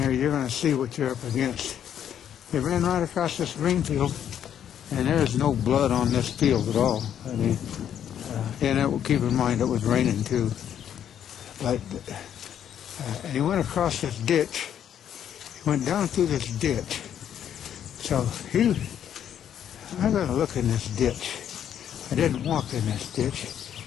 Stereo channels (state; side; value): quieter; right; 9.6 dB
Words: here, you're going to see what you're up against. They ran right across this green field, and there's no blood on this field at all. I mean, and keep in mind it was raining too. But and he went across this ditch. He went down through this ditch. So I got to look in this ditch. I didn't walk in this ditch,